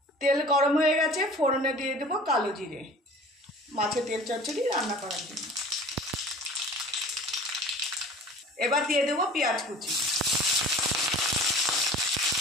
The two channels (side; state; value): both; normal; correlation 0.43